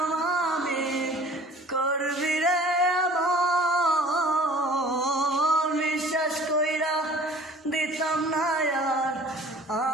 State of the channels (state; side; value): normal; both; correlation 0.49